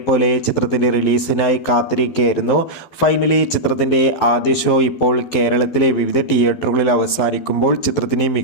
ചിത്രത്തിൻ്റെ റിലീസിനായി കാത്തിരിക്കുകയായിരുന്നു. ഫൈനലി ചിത്രത്തിൻ്റെ ആദ്യ ഷോ ഇപ്പോൾ കേരളത്തിലെ വിവിധ തിയേറ്ററുകളിൽ അവസാനിക്കുമ്പോൾ ചിത്രത്തിന്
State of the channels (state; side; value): late; right; 12 ms